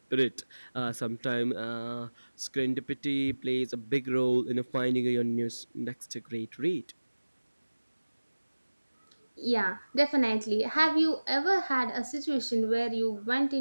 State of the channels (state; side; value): inverted; both; correlation -1.00